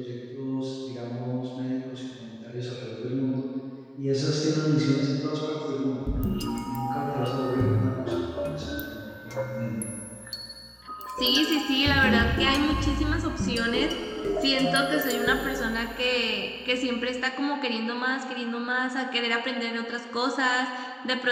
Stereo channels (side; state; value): both; identical; correlation 1.00